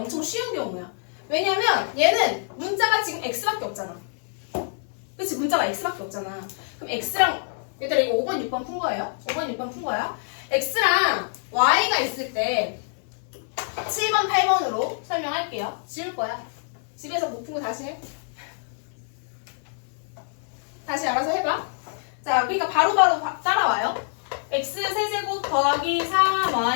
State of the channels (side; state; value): right; silent; 61 dB below the other